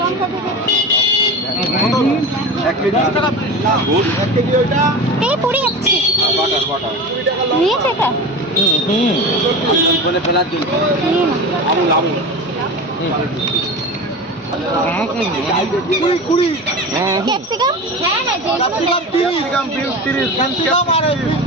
ক্যাপসিকাম, হ্যাঁ হ্যাঁ,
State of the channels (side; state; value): both; normal; correlation 0.28